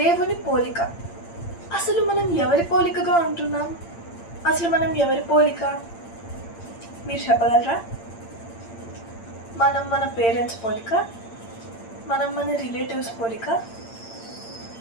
పోలిక. అసలు మనం ఎవరి పోలికగా ఉంటున్నాం? అసలు మనం ఎవరి పోలిక? మీరు చెప్పగలరా? మనం మన పేరెంట్స్ పోలిక? మనం మన రిలేటివ్స్ పోలిక?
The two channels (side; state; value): right; late; 8.8 ms